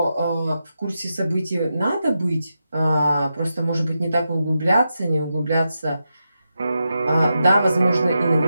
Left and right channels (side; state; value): both; inverted; correlation -0.88